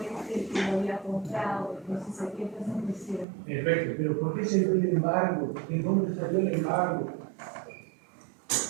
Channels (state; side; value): drops out; left; at 3.2 s